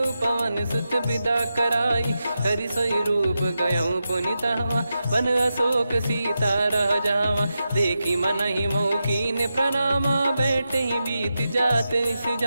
पवन सुत विदा कराई। हरि सोई रूप गयऊँ पुनि तहवा, बन अशोक सीता रह जावा। देखी मनहि मौकीन प्रणामा, बैठे ही बीत जात निस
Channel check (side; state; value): both; inverted; correlation -0.89